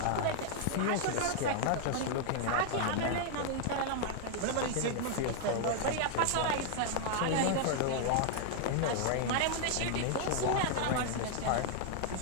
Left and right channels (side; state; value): both; different; correlation 0.00